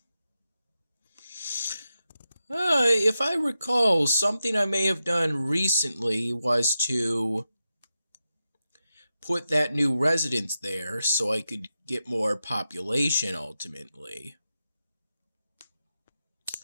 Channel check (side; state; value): both; inverted; correlation -0.89